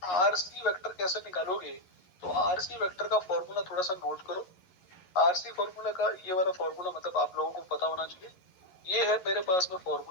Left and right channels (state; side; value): late; right; 11 ms